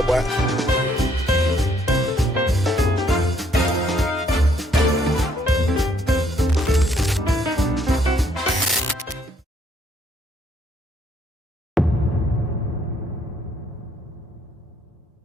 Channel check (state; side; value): normal; both; correlation 0.68